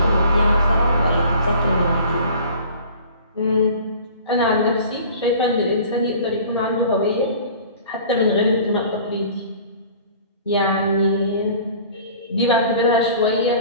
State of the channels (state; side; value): inverted; both; correlation -0.46